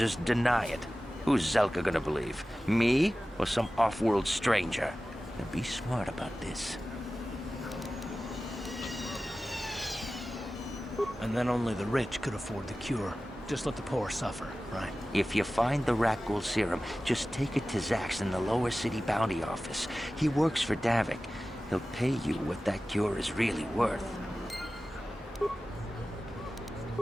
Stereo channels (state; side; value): normal; both; correlation 0.96